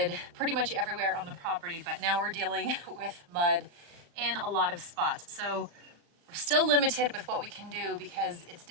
pretty much everywhere on the property, but now we're dealing with mud in a lot of spots. So we're still limited with what we can do because it's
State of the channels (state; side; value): late; left; 36 ms